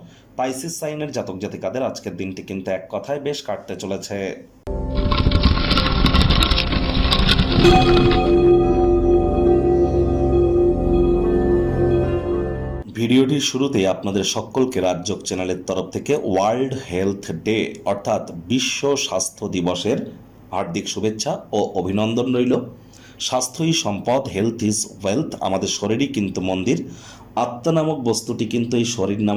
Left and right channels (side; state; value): both; identical; correlation 1.00